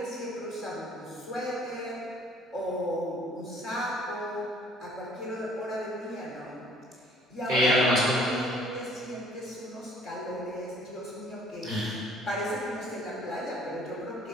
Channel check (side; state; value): both; normal; correlation 0.56